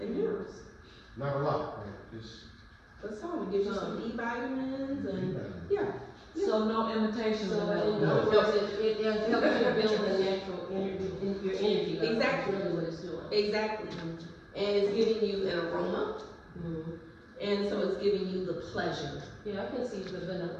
minerals. Not a lot, right? Just. But some, it gives you some B vitamins and, yeah. So no imitation So vanilla. in other words, it helps you build the natural energy, your energy level. Exactly. That's really what it's doing. Exactly. And it's giving you an aroma, and so it's giving you the pleasure. Yeah, I can see the vanilla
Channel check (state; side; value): identical; both; correlation 1.00